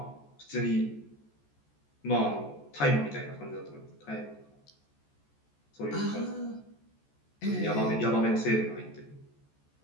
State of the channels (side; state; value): right; late; 14 ms